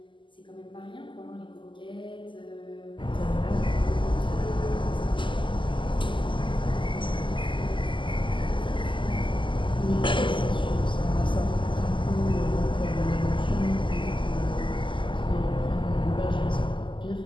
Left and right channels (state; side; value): late; right; 0.24 ms